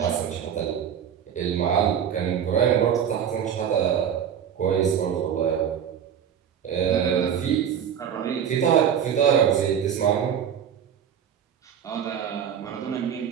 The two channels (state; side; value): quieter; left; 8.6 dB